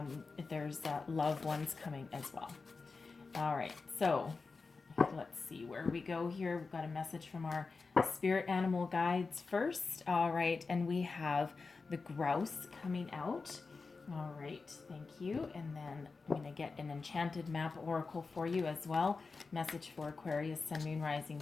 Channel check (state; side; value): quieter; right; 4.3 dB